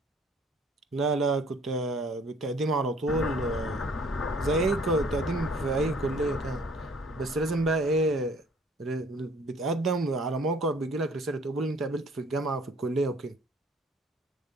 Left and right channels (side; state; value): both; normal; correlation 0.56